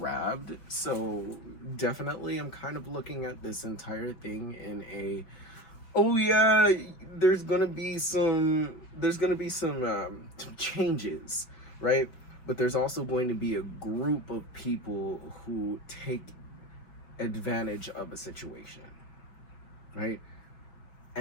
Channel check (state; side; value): late; right; 5.2 ms